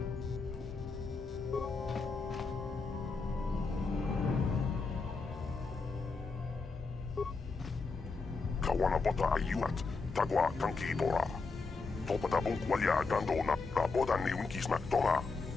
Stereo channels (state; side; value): quieter; right; 4.3 dB